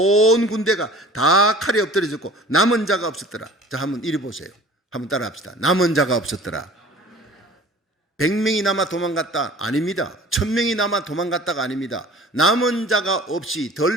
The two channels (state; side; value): normal; both; correlation 0.45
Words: 군대가 다 칼에 엎드려졌고 남은 자가 없었더라. 자, 한번 이리 보세요. 한번 따라 합시다. 남은 자가 없었더라. 100명이 남아 도망갔다? 아닙니다. 1000명이 남아 도망갔다가 아닙니다. 남은 자가 없이